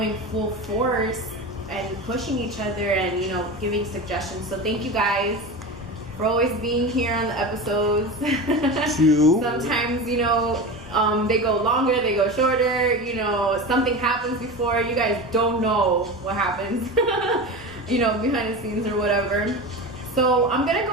full force and pushing each other and, you know, giving suggestions. So thank you guys for always being here on the episodes. Sometimes, you know, they go longer, they go shorter, you know, something happens before, you guys don't know what happens, you know, behind the scenes or whatever. So I'm gonna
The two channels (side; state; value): both; normal; correlation 0.27